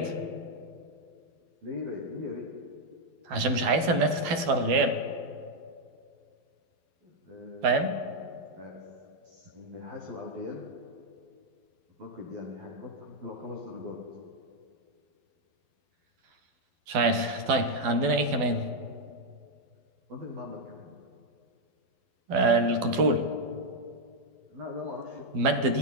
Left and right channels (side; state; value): left; late; 12 ms